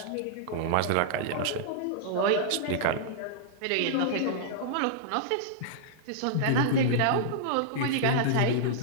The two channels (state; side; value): different; both; correlation -0.02